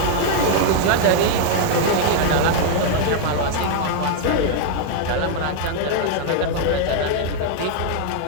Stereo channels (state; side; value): different; both; correlation 0.00